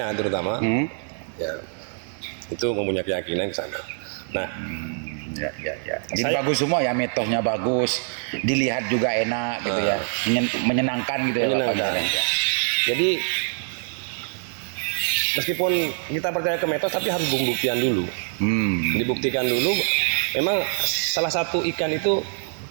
terutama, ya, itu mempunyai keyakinan ke sana. Nah, ya. Jadi bagus semua ya, mitosnya bagus, dilihat juga enak gitu ya, menyenangkan gitu ya. Menyenangkan. Jadi meskipun kita percaya ke mitos, tapi harus pembuktian dulu. Dibuktikan dulu. Memang salah satu ikan itu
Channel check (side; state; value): left; silent; digital silence